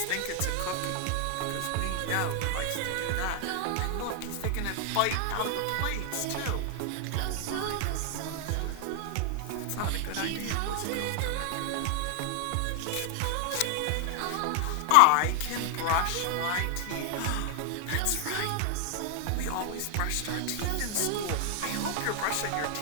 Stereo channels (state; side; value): different; both; correlation 0.00